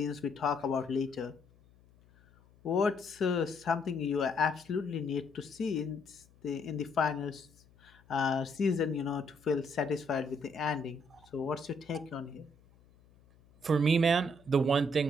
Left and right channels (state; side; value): noise; left; hum, 28 dB below the sound